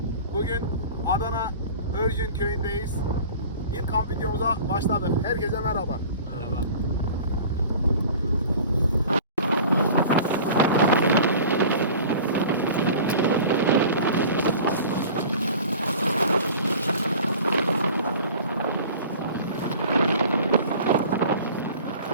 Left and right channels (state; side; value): inverted; both; correlation -0.42